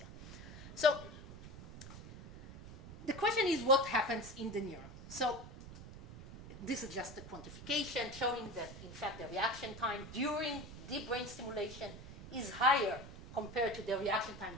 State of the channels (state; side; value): noise; right; rumble, 13 dB below the sound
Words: So the question is, what happens in the neuron? So this is just a quantification showing that, in fact, the reaction time during deep brain stimulation is higher compared to the reaction time